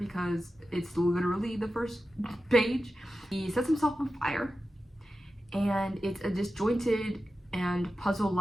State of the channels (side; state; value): both; normal; correlation 0.92